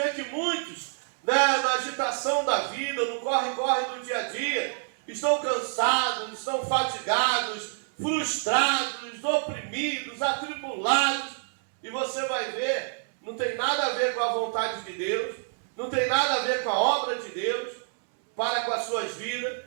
que muitos, na agitação da vida, no corre-corre do dia a dia, estão cansados, estão fatigados, frustrados, oprimidos, atribulados. E você vai ver, não tem nada a ver com a vontade de Deus, não tem nada a ver com a obra de Deus para com as suas vidas,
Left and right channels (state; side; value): silent; left; digital silence